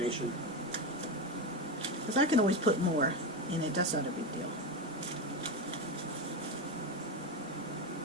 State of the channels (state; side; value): normal; both; correlation 0.15